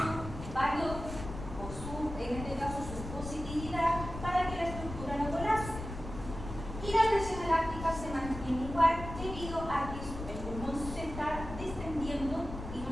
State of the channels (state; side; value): noise; left; rumble, 9 dB below the sound